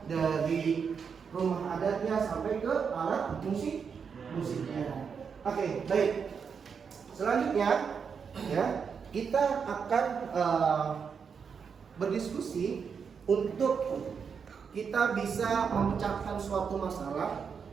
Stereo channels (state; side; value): quieter; left; 6.3 dB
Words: dari rumah adatnya sampai ke alat musiknya. Oke, baik. Selanjutnya, ya, kita akan berdiskusi untuk kita bisa memecahkan suatu masalah